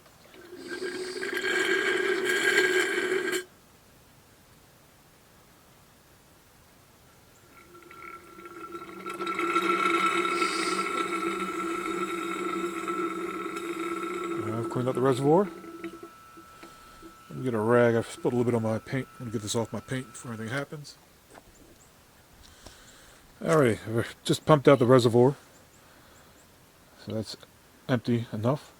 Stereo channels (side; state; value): both; identical; correlation 1.00